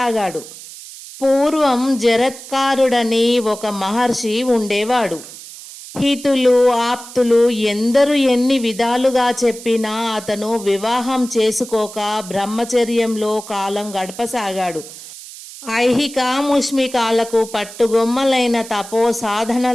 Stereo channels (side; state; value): right; noise; hiss, 15 dB below the sound